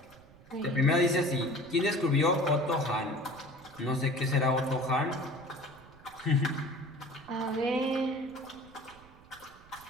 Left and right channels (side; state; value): right; noise; rumble, 23 dB below the sound